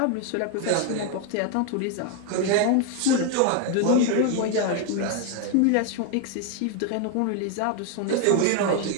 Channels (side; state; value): both; different; correlation 0.01